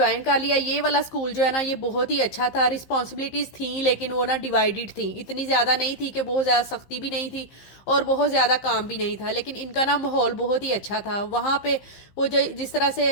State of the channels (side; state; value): right; late; 15 ms